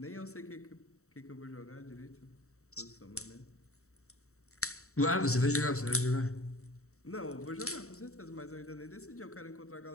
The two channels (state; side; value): late; right; 0.64 ms